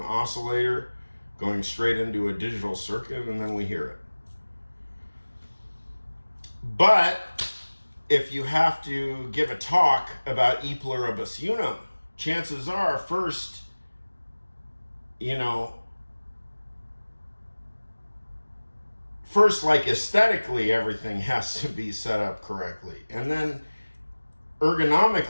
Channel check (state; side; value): inverted; both; correlation -1.00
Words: oscillator going straight into a digital circuit, and then we hear it. But if you have to give a talk about E Pluribus Unum, chances are first, like aesthetically, everything has to be set up correctly, and then